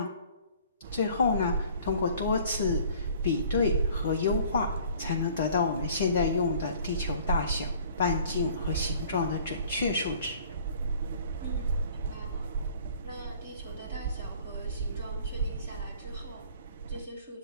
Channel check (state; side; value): inverted; both; correlation -0.52